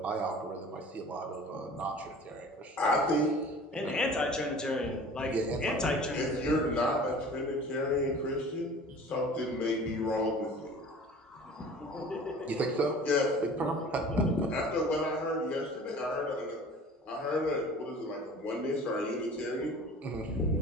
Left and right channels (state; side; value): normal; both; correlation 0.44